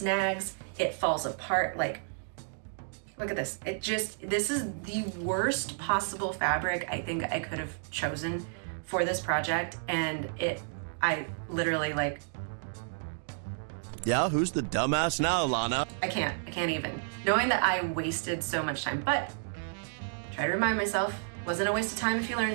it falls apart. Like, look at this. This is the worst possible fabric I think I could have chosen for this project. And I literally like, yeah, who's the dumbass now, Lana? I can't even. Knowing that I wasted so much time, but try to remind myself, wasn't a waste of time if you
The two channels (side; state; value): left; silent; digital silence